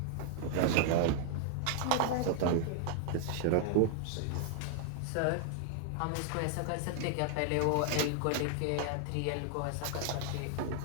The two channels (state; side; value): different; both; correlation 0.00